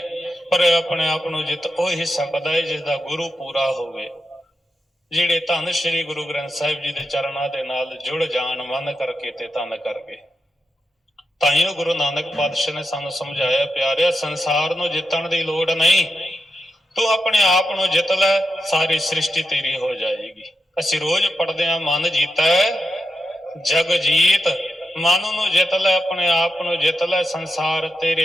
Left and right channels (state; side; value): normal; both; correlation 0.87